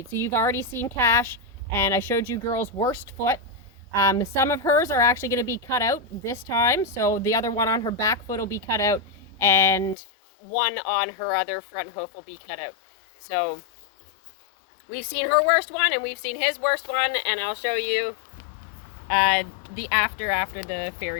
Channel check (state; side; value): drops out; right; at 10.0 s